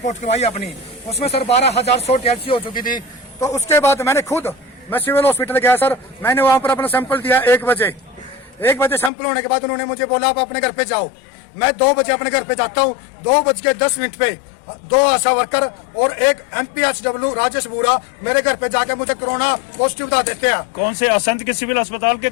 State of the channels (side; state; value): right; drops out; at 9.1 s